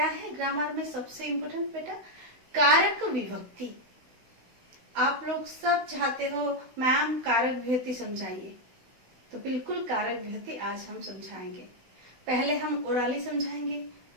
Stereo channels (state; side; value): late; left; 16 ms